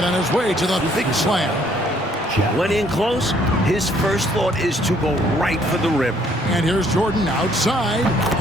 on his way to the big slam. When in close, his first thought is to go right for the rim. And here's Jordan outside.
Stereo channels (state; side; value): normal; both; correlation 0.64